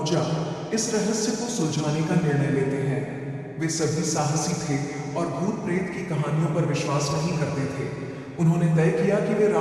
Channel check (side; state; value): both; identical; correlation 1.00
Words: इस रहस्य को सुलझाने का निर्णय लेते हैं। वे सभी साहसी थे और भूत प्रेत की कहानियों पर विश्वास नहीं करते थे। उन्होंने तय किया कि वे